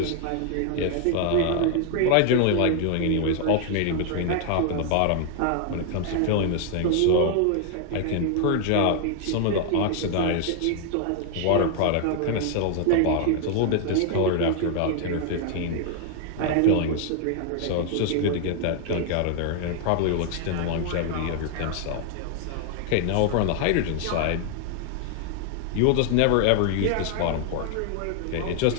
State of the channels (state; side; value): different; both; correlation 0.00